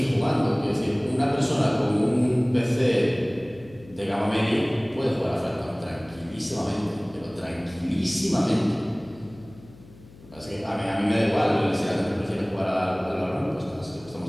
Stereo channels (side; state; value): left; noise; hum, 22 dB below the sound